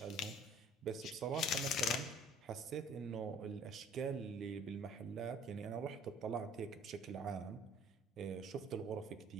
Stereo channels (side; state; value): both; normal; correlation 0.52